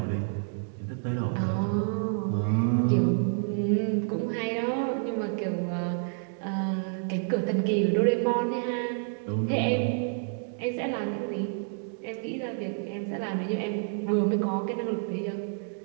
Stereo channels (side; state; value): left; silent; 58 dB below the other